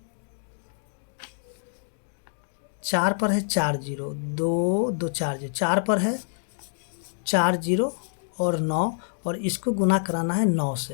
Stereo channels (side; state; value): right; silent; digital silence